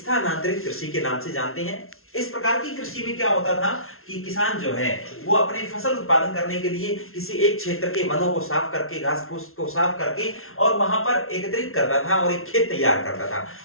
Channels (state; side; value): late; right; 0.62 ms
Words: कृषि के नाम से जानते हैं। इस प्रकार की कृषि में क्या होता था कि किसान जो है वो अपने फसल उत्पादन करने के लिए किसी एक क्षेत्र के वनों को साफ करके, घास फूस को साफ करके और वहां पर एकत्रित करता था और एक खेत तैयार करता था।